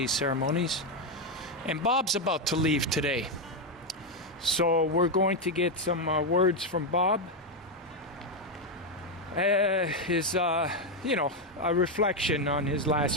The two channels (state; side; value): normal; both; correlation 0.05